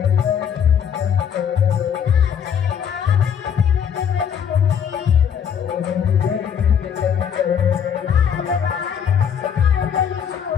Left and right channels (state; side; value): quieter; right; 8.0 dB